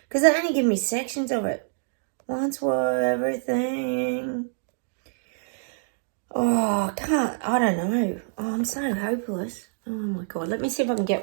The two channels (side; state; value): left; silent; digital silence